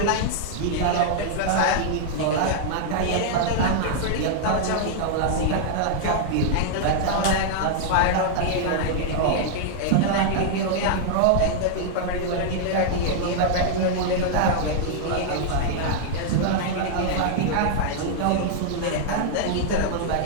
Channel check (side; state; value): both; different; correlation -0.01